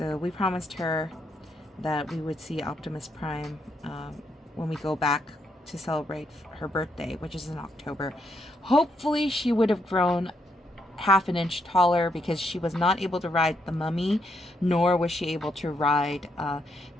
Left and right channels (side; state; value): both; normal; correlation 0.77